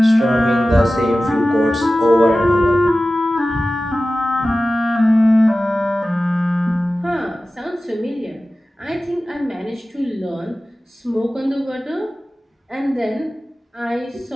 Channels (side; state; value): both; normal; correlation 0.95